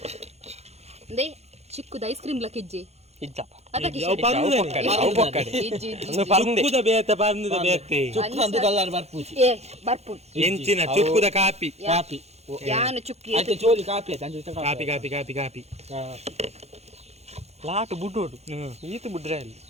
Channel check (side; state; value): left; late; 0.31 ms